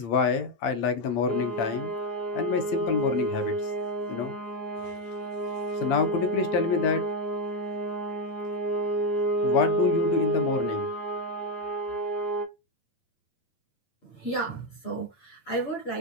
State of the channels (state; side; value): late; right; 8.7 ms